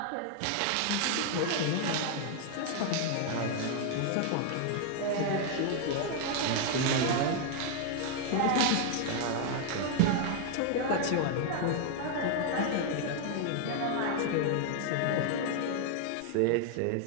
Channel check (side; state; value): both; different; correlation 0.00